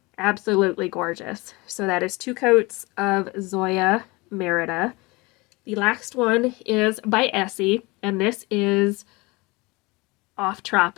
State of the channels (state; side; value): quieter; right; 24.7 dB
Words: Absolutely gorgeous. So that is 2 coats of ZOYA Merida. The last one is by ESSIE, and this is Off